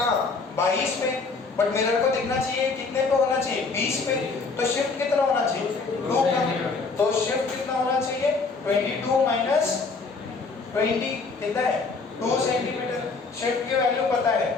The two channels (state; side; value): quieter; right; 4.3 dB